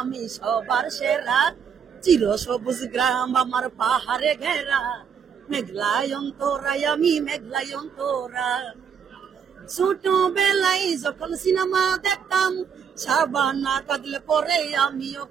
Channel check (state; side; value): quieter; left; 7.1 dB